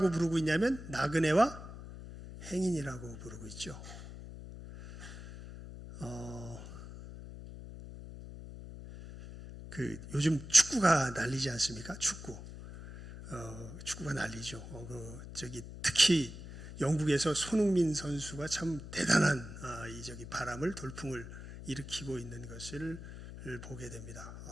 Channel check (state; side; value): noise; left; hum, 12 dB below the sound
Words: 부르고 있냐면 나그네와 행인이라고 부르고 있죠. 요즘 축구가 난리지 않습니까? 축구가 난리죠. 특히 영국에서 손흥민 선수가 참 대단한 바람을, 돌풍을 일으키고 있는 것을 보게 됩니다.